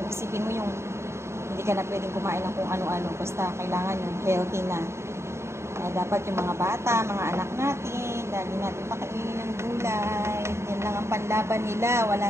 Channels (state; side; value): late; left; 0.13 ms